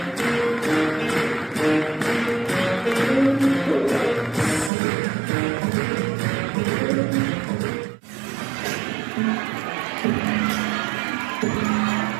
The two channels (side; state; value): left; drops out; at 4.7 s